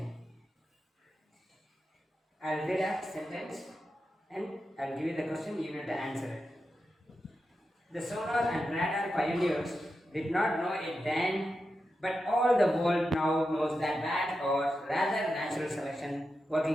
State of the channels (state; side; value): normal; both; correlation 0.89